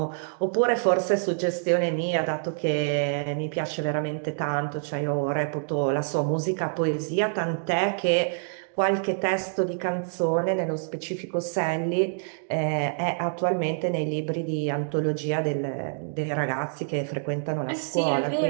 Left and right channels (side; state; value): left; silent; digital silence